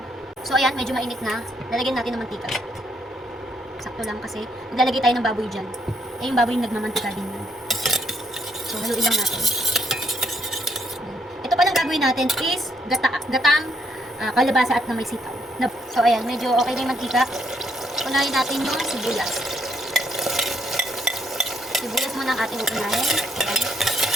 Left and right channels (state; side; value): normal; both; correlation 0.72